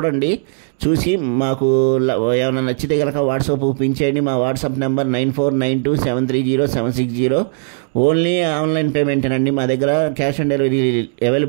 చూసి మాకు ఏమైనా నచ్చితే కనుక వాట్సాప్ పంపించేయండి. మా వాట్సాప్ నెంబర్ 9492730760. ఓన్లీ ఆన్లైన్ పేమెంటేనండి. మా దగ్గర క్యాష్ ఆన్ డెలివరీ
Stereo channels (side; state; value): left; silent; digital silence